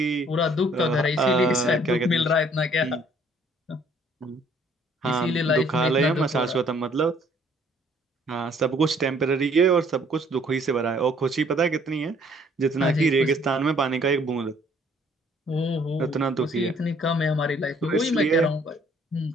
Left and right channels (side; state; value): both; normal; correlation 0.61